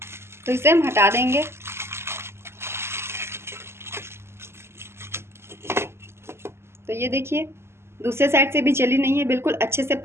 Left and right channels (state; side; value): late; left; 0.12 ms